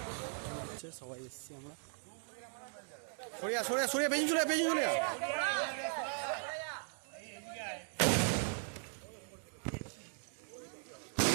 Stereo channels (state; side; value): silent; left; 52 dB below the other